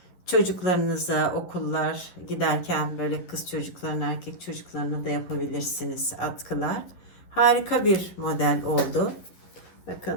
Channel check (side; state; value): right; late; 11 ms